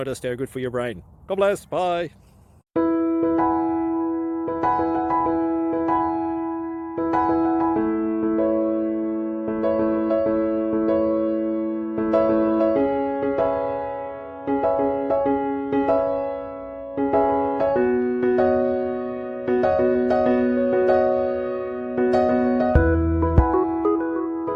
they're good for your brain. God bless, bye.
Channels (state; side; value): identical; both; correlation 1.00